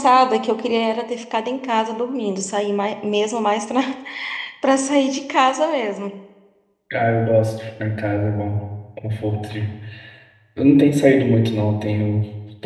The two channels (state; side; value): identical; both; correlation 1.00